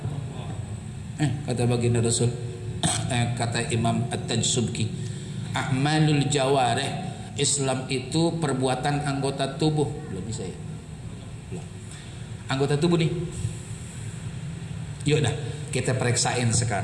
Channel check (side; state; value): both; identical; correlation 1.00